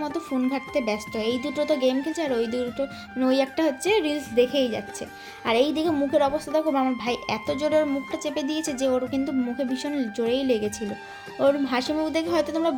মতো ফোন ঘাঁটতে ব্যস্ত। এই দুটো তো গেম খেলছে, আর ওই দুটো, মানে ওই একটা হচ্ছে রিলস দেখেই যাচ্ছে। আর এই দিকে মুখের অবস্থা দেখো, আমার ভাই এত জোরে ওর মুখটা চেপে দিয়েছে যে ওর কিন্তু মুখে ভীষণ জোরেই লেগেছিল। ওর হাসি মুখ দেখে হয়তো তোমরা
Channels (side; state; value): both; identical; correlation 1.00